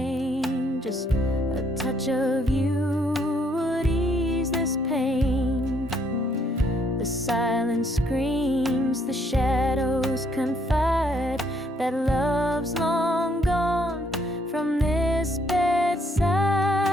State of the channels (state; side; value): normal; both; correlation 0.69